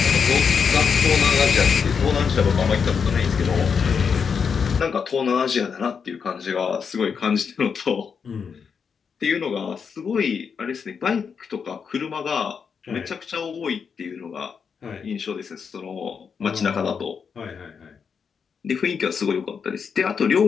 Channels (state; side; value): quieter; right; 6.3 dB